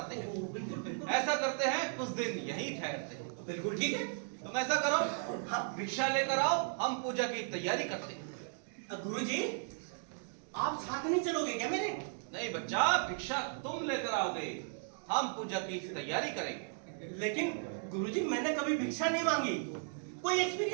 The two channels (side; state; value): left; silent; 54 dB below the other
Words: हैं। बिल्कुल बिल्कुल। ऐसा करते हैं कुछ दिन यहीं ठहरते हैं। बिल्कुल ठीक है। तुम ऐसा करो, भिक्षा लेकर आओ, हम पूजा की तैयारी करते हैं। गुरुजी, आप साथ नहीं चलोगे क्या मेरे? नहीं बच्चा, भिक्षा तुम लेकर आओगे, हम पूजा की तैयारी करेंगे। लेकिन गुरुजी मैंने कभी भिक्षा नहीं मांगी, कोई